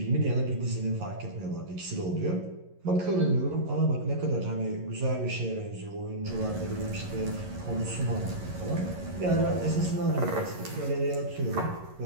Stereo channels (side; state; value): left; late; 11 ms